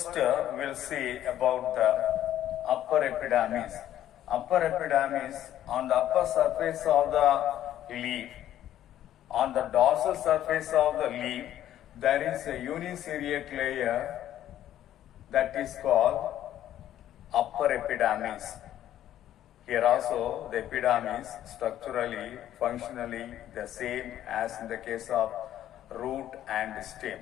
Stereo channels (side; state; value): right; quieter; 12.0 dB